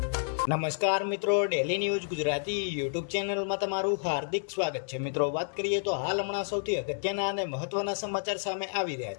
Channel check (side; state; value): right; silent; 58 dB below the other